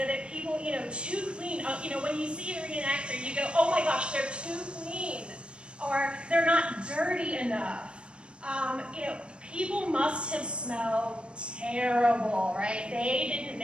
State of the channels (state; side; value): late; left; 0.056 ms